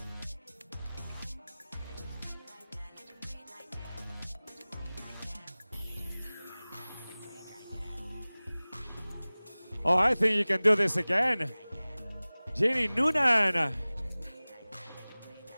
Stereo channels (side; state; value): both; inverted; correlation -0.99